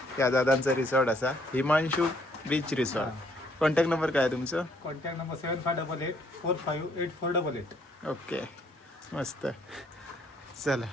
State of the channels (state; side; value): normal; both; correlation 0.66